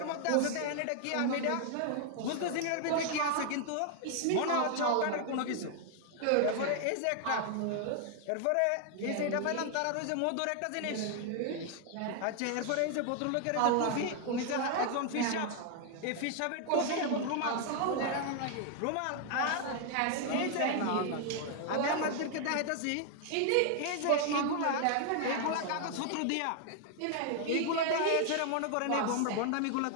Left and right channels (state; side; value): different; both; correlation 0.00